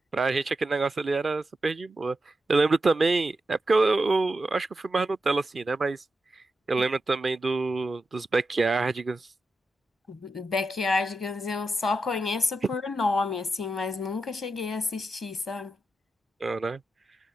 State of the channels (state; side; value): normal; both; correlation 0.89